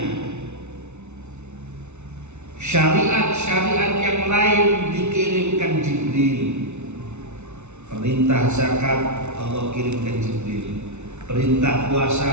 syariat-syariat yang lain dikirimkan Jibril, perintah zakat Allah kirimkan Jibril, perintah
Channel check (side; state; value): left; late; 0.82 ms